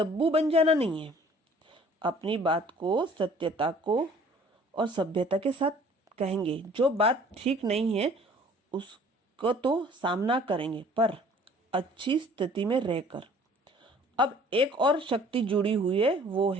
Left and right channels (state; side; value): normal; both; correlation 0.53